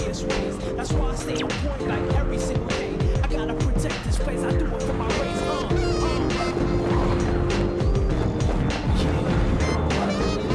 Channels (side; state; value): both; identical; correlation 1.00